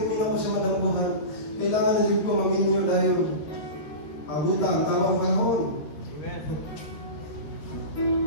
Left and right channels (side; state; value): right; late; 13 ms